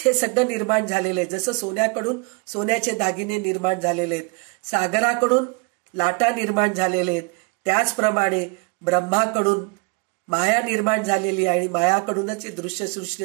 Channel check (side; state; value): left; quieter; 31.5 dB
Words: हे सगळं निर्माण झालेलं आहे. जसं सोन्याकडून सोन्याचे दागिने निर्माण झालेले आहेत, सागराकडून लाटा निर्माण झालेले आहेत, त्याचप्रमाणे ब्रह्माकडून माया निर्माण झालेली आहे आणि मायाकडूनच हे दृश्यसृष्टी